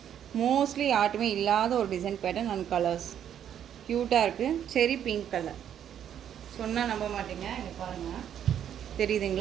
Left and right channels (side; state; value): left; quieter; 9.6 dB